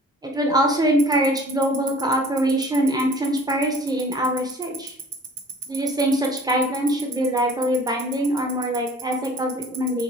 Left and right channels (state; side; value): normal; both; correlation 0.49